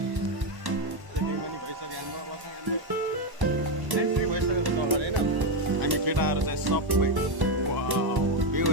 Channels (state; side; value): late; left; 1.1 ms